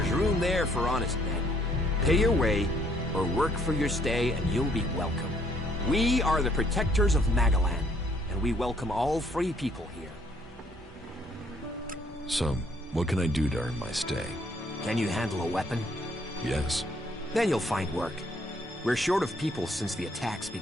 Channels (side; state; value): both; normal; correlation 0.66